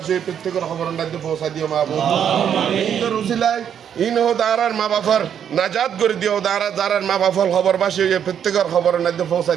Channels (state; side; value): quieter; left; 8.7 dB